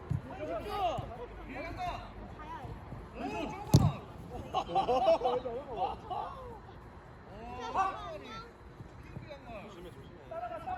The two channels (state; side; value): identical; both; correlation 1.00